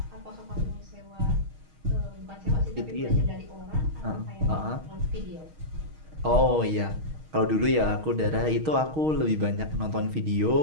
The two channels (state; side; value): late; left; 6.4 ms